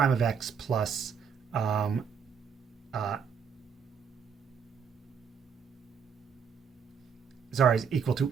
of x plus is equal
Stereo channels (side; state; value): left; quieter; 6.7 dB